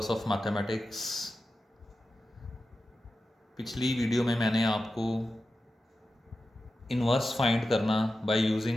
of Mathematics। पिछली video में मैंने आपको इन्वर्स फाइंड करना बाय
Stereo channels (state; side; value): normal; both; correlation 0.92